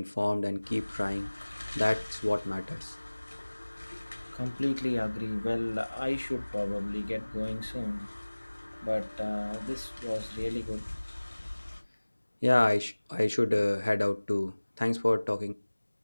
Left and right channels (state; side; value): inverted; both; correlation -1.00